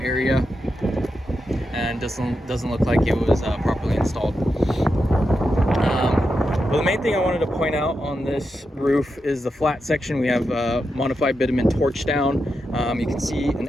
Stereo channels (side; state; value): both; normal; correlation 0.87